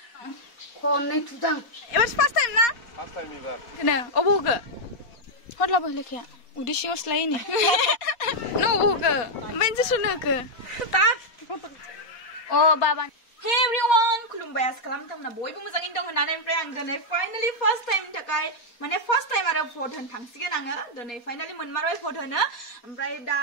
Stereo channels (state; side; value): late; right; 4.2 ms